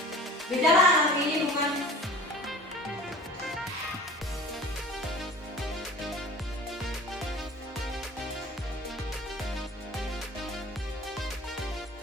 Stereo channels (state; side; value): normal; both; correlation 0.42